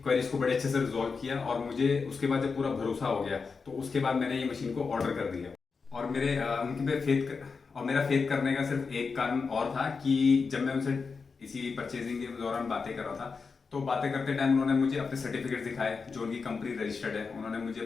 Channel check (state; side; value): quieter; right; 5.0 dB